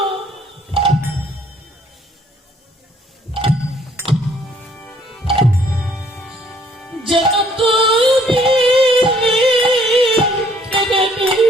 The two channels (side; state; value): both; normal; correlation 0.62